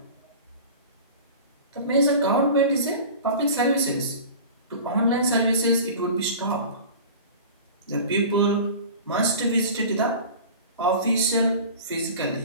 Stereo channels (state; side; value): inverted; both; correlation -0.37